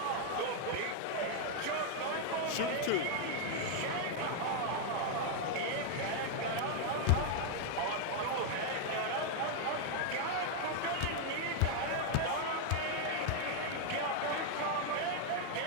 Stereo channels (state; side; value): different; both; correlation 0.00